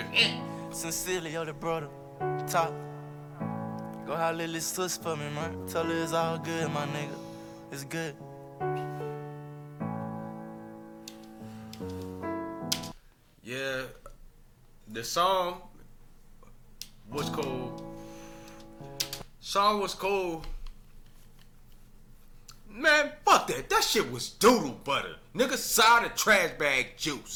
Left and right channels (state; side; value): identical; both; correlation 1.00